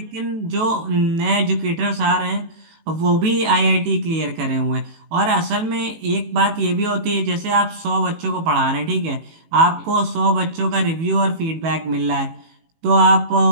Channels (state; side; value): late; left; 18 ms